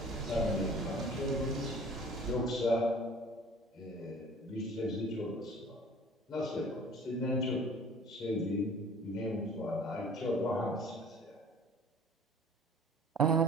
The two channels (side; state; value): both; normal; correlation 0.47